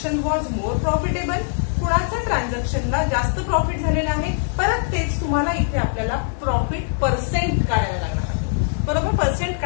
was more profitable. कुणाचं ट्रान्झॅक्शनला जास्त प्रॉफिट झालेलं आहे. परत तेच तुम्हाला इथे आपल्याला प्रॉफिट पर्सेंट काढायला लागणार आहे. बरोबर, पर्सेंट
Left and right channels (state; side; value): silent; right; digital silence